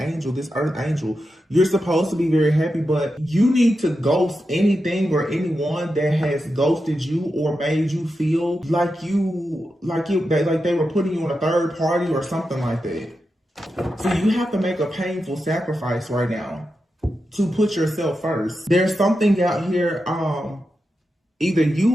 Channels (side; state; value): both; normal; correlation 0.89